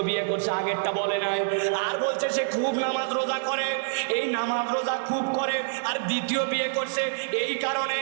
বিয়ে করছে, আগেরটা বলে নাই। আর বলছে সে খুব নামাজ রোজা করে, এই নামাজ রোজা খুব করে, আর দ্বিতীয় বিয়ে করছে। এই কারণে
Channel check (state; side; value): silent; left; 57 dB below the other